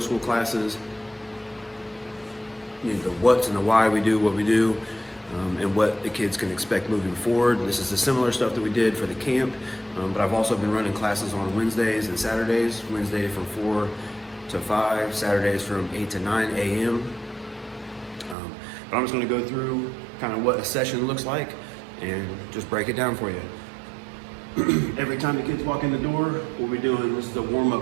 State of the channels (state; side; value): drops out; left; at 18.4 s